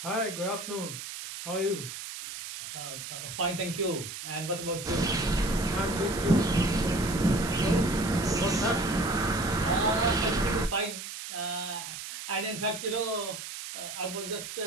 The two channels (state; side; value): noise; right; hiss, 9 dB below the sound